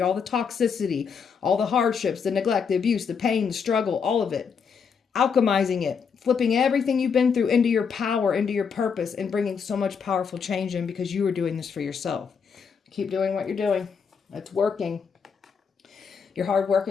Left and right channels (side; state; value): right; quieter; 6.2 dB